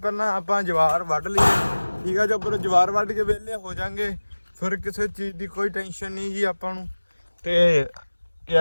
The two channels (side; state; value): both; inverted; correlation -1.00